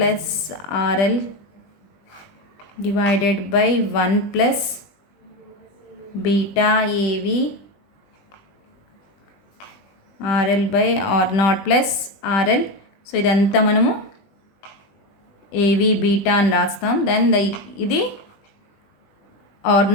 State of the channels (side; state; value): right; late; 20 ms